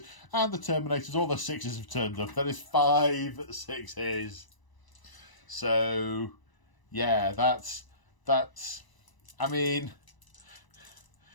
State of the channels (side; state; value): right; late; 1.0 ms